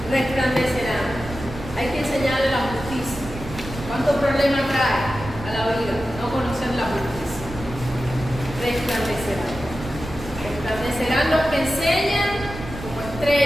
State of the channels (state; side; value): noise; right; rumble, 12 dB below the sound